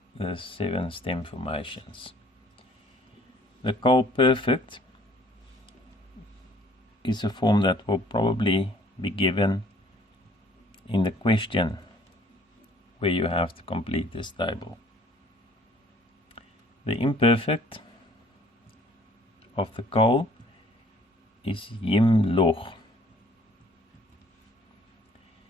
the 7 stem formations. The call perfect is a form that will probably be given in the question where you have to complete this table. The imperfect of the call is yim loch.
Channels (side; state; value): both; normal; correlation 0.57